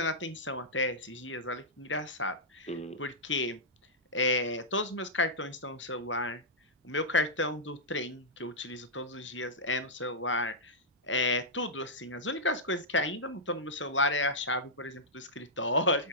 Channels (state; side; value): normal; both; correlation -0.11